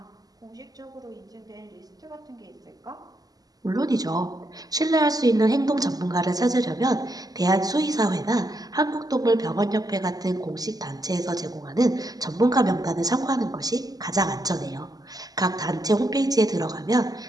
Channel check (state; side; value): late; left; 0.18 ms